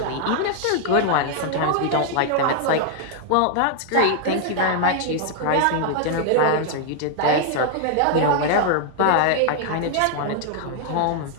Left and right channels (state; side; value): different; both; correlation 0.00